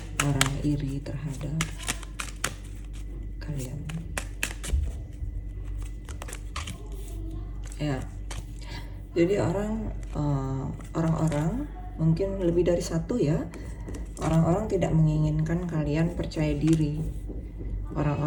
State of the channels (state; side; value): identical; both; correlation 1.00